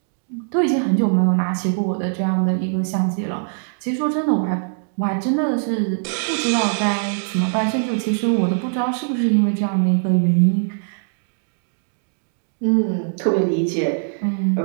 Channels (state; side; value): silent; left; digital silence